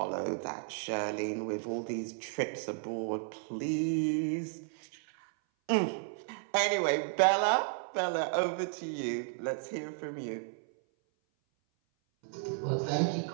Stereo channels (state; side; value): silent; left; 55 dB below the other